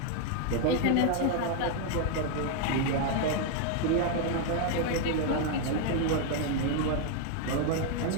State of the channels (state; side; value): different; both; correlation 0.00